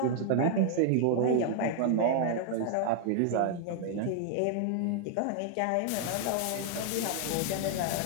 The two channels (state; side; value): different; both; correlation 0.00